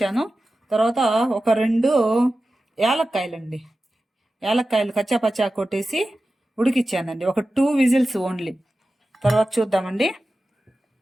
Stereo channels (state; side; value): normal; both; correlation 0.94